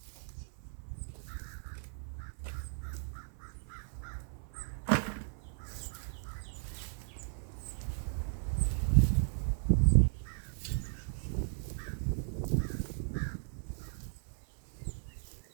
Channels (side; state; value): left; silent; 54 dB below the other